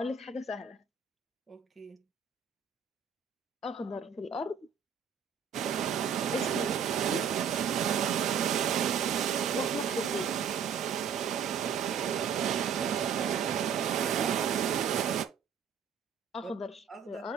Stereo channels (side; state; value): left; quieter; 7.1 dB